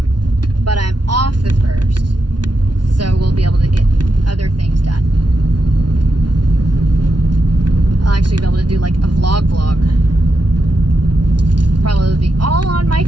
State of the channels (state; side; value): late; left; 0.70 ms